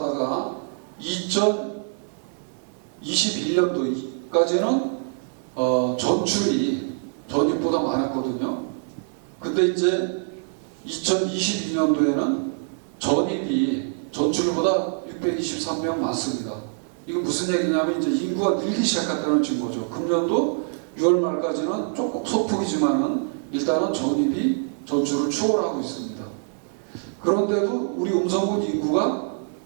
2021년도까지는 전출이 전입보다 많았거든요. 근데 이제 2022년도에는 전입이 전출보다 623명 많습니다. 이거 무슨 얘기냐면 이제 인구가 늘기 시작했다는 증거죠. 금년도 6월 말까지는 조금 소폭이지만은 일단은 전입이 전출을 추월하고 있습니다. 그런데도 우리 음성군 인구가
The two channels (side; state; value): left; silent; 59 dB below the other